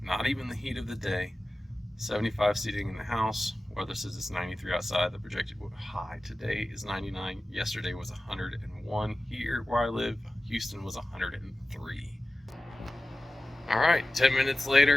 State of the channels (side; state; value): both; normal; correlation 0.96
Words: not even the heat of the day. 75 seating in the house. Weather says it's 93 outside. The projected high today is 99. Yesterday was 101 here where I live. Houston was 103. All right, 10 minutes